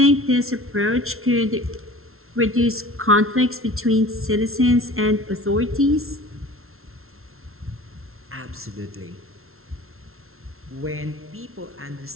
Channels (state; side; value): late; left; 0.62 ms